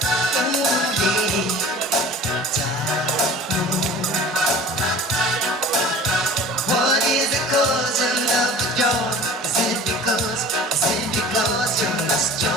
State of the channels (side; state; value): both; normal; correlation 0.41